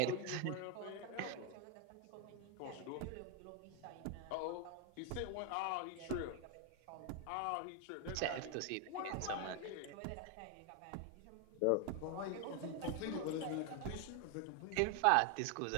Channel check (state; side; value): different; both; correlation 0.01